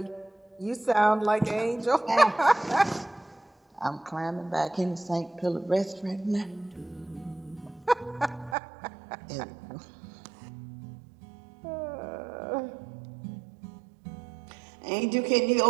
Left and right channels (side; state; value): left; drops out; at 8.6 s